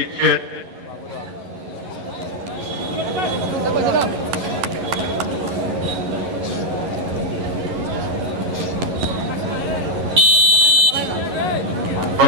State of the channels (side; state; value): left; late; 11 ms